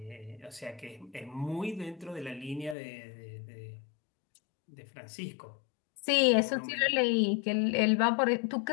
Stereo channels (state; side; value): drops out; right; at 2.8 s